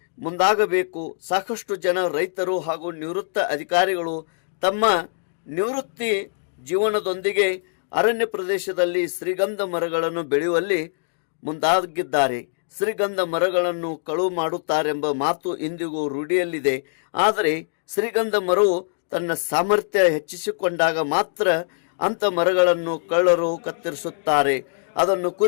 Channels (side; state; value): right; silent; digital silence